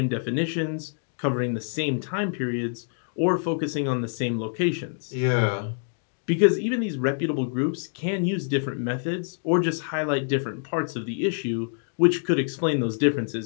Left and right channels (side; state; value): right; silent; 61 dB below the other